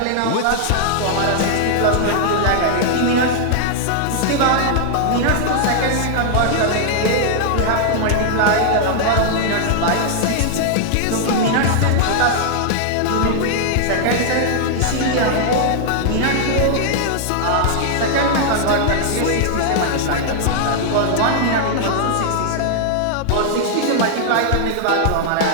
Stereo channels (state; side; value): different; both; correlation -0.01